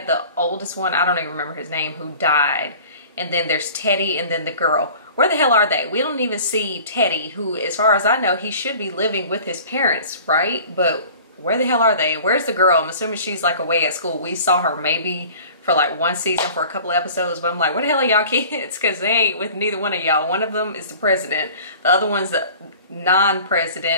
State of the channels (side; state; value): both; inverted; correlation -0.45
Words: the oldest one, I don't even remember his name, who died, and then there's Teddy and then the girl. Where the hell are they? We don't even see Teddy, who, as far as I know, he should be living with his parents, right? But where the hell are they? Where's the girl? I'm assuming she's like away at school. We saw her maybe for like one season for a couple of episodes, but I'm like, where the hell are y'all kids? Because they ain't with neither one of y'all. One of them is the president. The other one's the